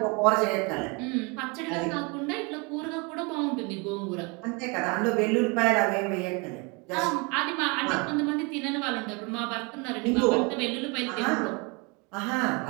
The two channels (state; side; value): quieter; left; 30.0 dB